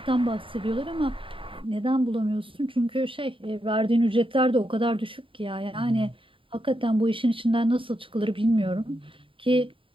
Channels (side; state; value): left; late; 0.25 ms